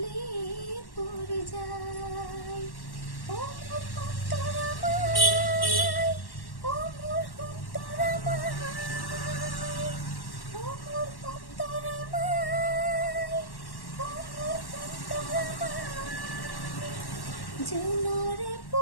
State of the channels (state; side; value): late; right; 1.1 ms